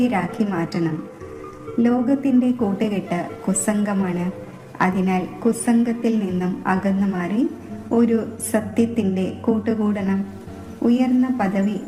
മാറ്റണം. ലോകത്തിൻ്റെ കൂട്ടുകെട്ട് കുസംഗമാണ്. അതിനാൽ കുസംഗത്തിൽ നിന്നും അകന്നു മാറി ഒരു സത്യത്തിൻ്റെ കൂട്ടുകൂടണം. ഉയർന്ന പദവി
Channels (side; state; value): both; identical; correlation 1.00